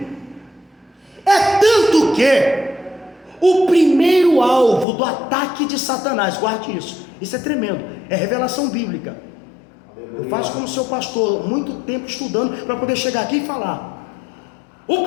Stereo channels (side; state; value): right; drops out; at 4.9 s